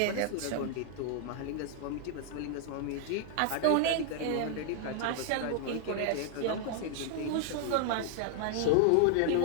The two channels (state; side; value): different; both; correlation -0.01